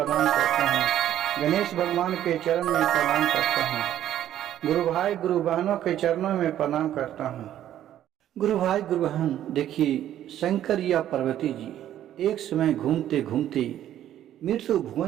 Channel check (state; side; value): quieter; left; 11.7 dB